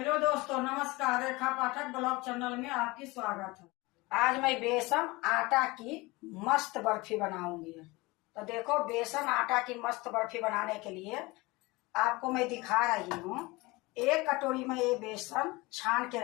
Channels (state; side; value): quieter; right; 23.0 dB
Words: दोस्तों, नमस्कार। रेखा पाठक ब्लॉग चैनल में आपकी स्वागत है। आज मैं बेसन आटा की मस्त बर्फी बनाऊंगी। तो देखो, बेसन आटा की मस्त बर्फी बनाने के लिए आपको मैं दिखा रही हूँ। एक कटोरी में ये बेसन छान के